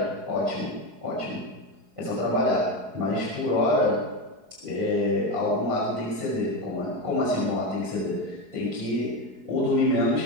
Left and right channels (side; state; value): left; late; 4.7 ms